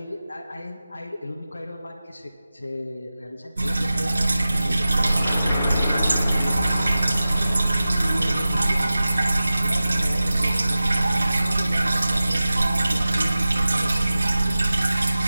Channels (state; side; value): inverted; both; correlation -0.95